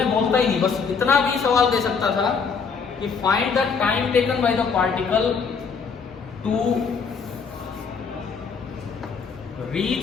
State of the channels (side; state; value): right; quieter; 5.6 dB